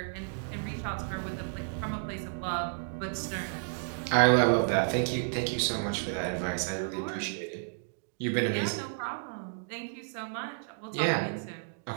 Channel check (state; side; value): silent; left; digital silence